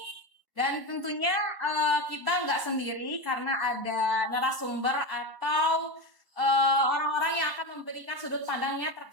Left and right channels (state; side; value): late; left; 1.1 ms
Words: Dan tentunya kita nggak sendiri karena ada narasumber atau orang-orang yang akan memberikan sudut pandangnya